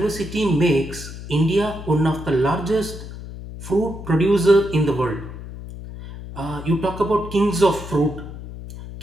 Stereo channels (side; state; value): left; noise; hum, 12 dB below the sound